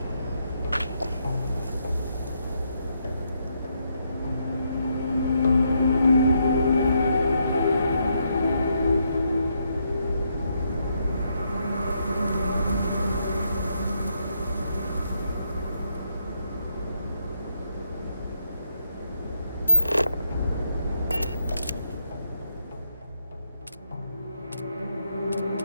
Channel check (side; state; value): both; inverted; correlation -0.78